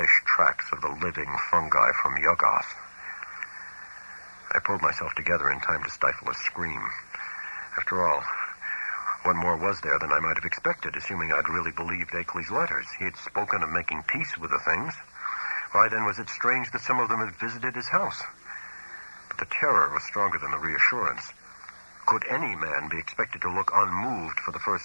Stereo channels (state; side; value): inverted; both; correlation -1.00